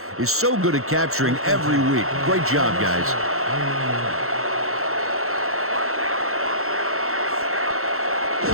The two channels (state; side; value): late; left; 0.63 ms